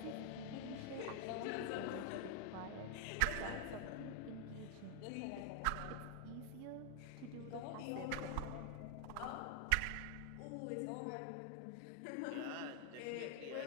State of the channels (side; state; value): both; different; correlation 0.00